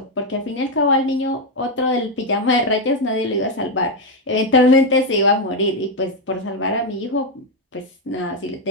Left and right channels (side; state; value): both; normal; correlation 0.05